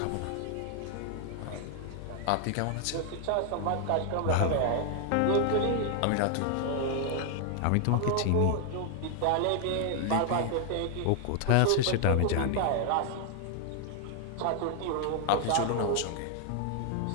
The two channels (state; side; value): different; both; correlation 0.00